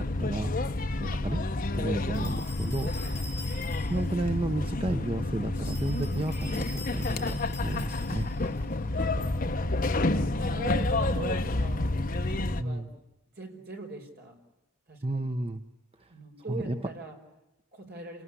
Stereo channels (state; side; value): normal; both; correlation 0.68